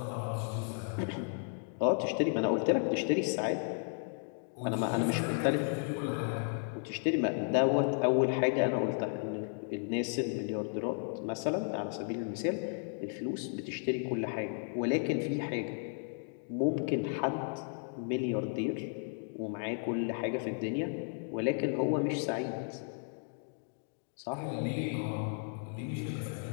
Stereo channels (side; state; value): right; silent; 55 dB below the other